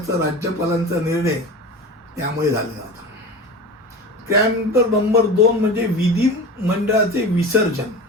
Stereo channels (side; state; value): both; normal; correlation 0.32